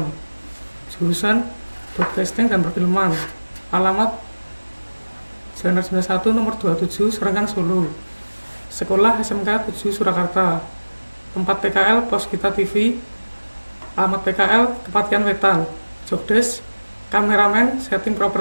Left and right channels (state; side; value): inverted; both; correlation -1.00